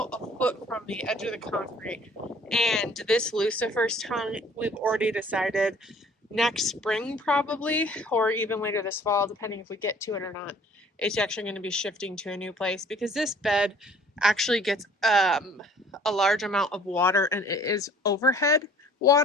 a foot from the edge of the concrete. And this Lucifer's tongue, we've already decided next spring probably, or even later this fall, depending if we get to it or not, it's actually going to be shifting to a new place because this bed actually gets a large amount of water, and it is overhead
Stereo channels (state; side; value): normal; both; correlation 0.53